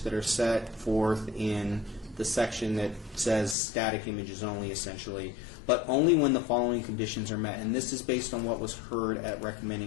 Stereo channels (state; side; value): drops out; right; at 3.6 s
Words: that are set forth in the section that says static images only, essentially, but only when the following conditions are met. And this is based on what was heard at